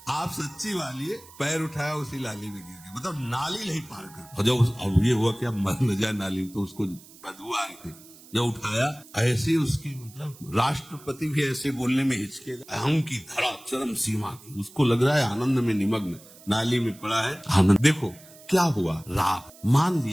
आप सच्ची वाली है, पैर उठाया उसी नाली में गिर गया, मतलब नाली नहीं पार कर। और जब अब ये हुआ कि अब मर न जाए नाली, तो उसको बदबू आ रही थी, जब उठाया ऐसे उसकी, मतलब राष्ट्रपति भी ऐसे बोलने में हिचके, अहम की धरा चरम सीमा की, उसको लग रहा है आनंद में निमग्न, नाली में पड़ा है आनंद। देखो क्या हुआ, राग मान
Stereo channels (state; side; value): noise; right; hiss, 22 dB below the sound